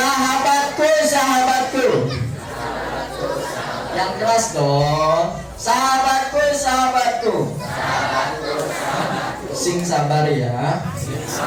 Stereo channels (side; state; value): both; identical; correlation 1.00